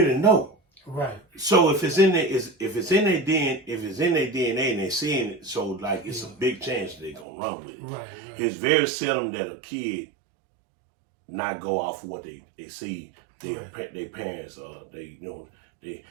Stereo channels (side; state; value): left; drops out; at 7.2 s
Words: know. Right. So if it's in their DNA and they're seeing it, so like it's a big chance they're gonna run with it. Right. It's very seldom that a kid not go off of what they see their parents